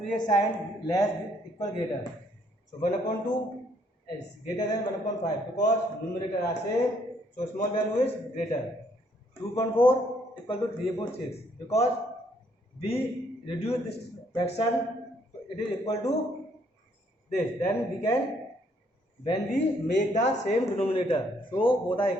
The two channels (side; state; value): both; normal; correlation 0.68